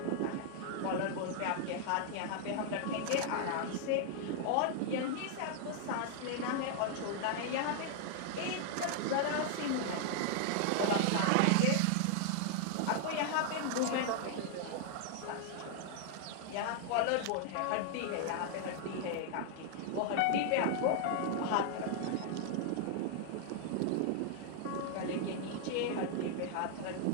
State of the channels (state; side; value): different; both; correlation 0.00